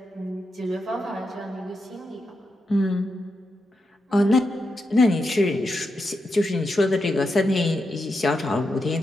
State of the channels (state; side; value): normal; both; correlation 0.86